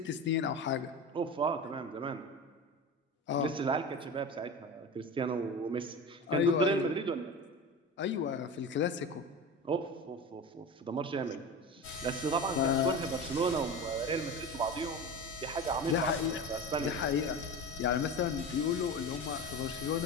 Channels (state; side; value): normal; both; correlation 0.28